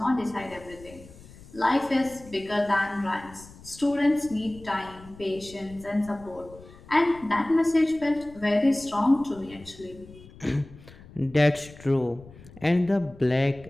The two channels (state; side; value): noise; left; rumble, 20 dB below the sound